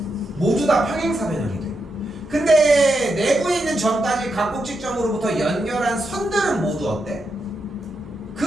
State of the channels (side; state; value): both; normal; correlation 0.84